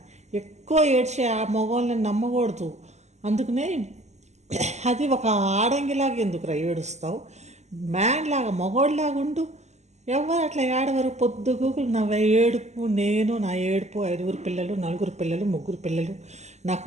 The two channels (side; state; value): left; late; 0.33 ms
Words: ఎక్కువ ఏడ్చే ఆ మగవాళ్ళని నమ్మకూడదు. అందుకనే అది ఒక ఆడంగిలాగా ఎందుకురా ఏడుస్తావు? మ్యాన్ లాగా మగోళ్ళలాగా ఉండు. ఎవరు అట్లా ఏడవరు పొద్దుగూకులు. నా ఏడుపు, నేను నా ఏడుపు, 5 పిల్లలు, 4 పిల్లలు, 3 పిల్లలు,